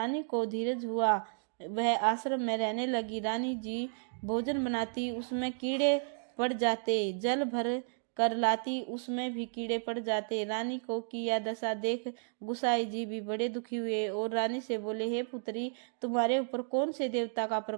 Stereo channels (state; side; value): silent; left; digital silence